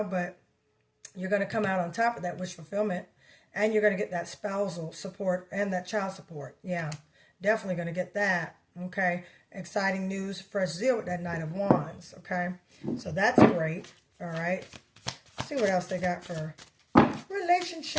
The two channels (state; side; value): identical; both; correlation 1.00